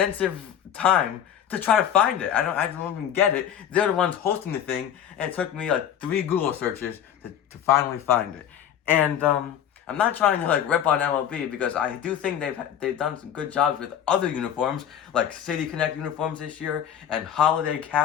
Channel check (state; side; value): quieter; right; 9.6 dB